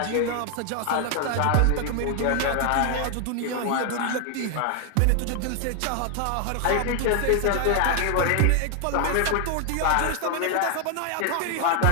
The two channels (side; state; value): both; different; correlation 0.00